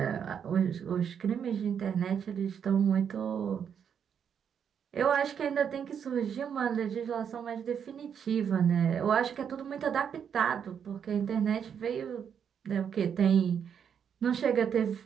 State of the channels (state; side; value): quieter; left; 7.8 dB